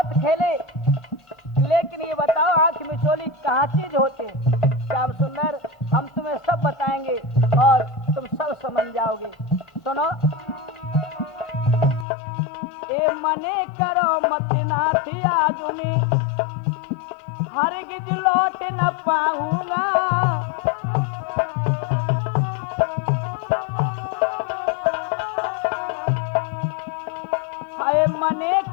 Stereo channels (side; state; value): right; drops out; at 12.1 s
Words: खेले, लेकिन ये बताओ आंख मिचोली कहाँ चीज होते। श्याम सुंदर, हम तुम्हें सब बताएंगे और तुम सब समझ जाओगे। सुनो, ए मने करो मत नाथ आजुनी, हरगिज लौट न पाऊंगा।